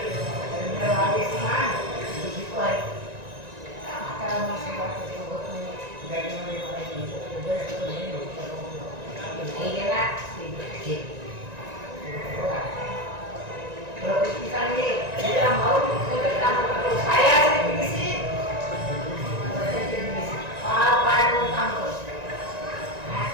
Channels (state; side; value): late; left; 1.9 ms